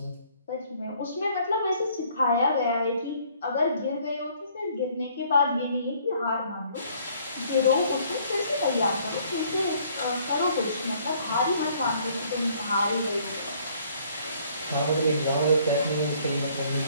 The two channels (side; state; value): both; inverted; correlation -0.61